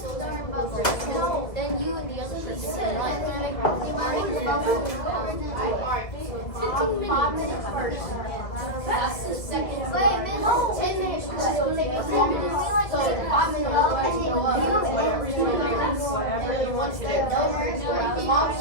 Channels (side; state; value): right; late; 2.3 ms